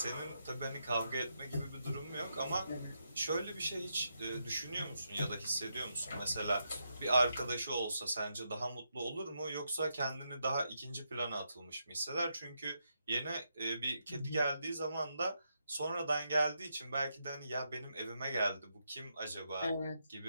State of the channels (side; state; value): both; inverted; correlation -0.82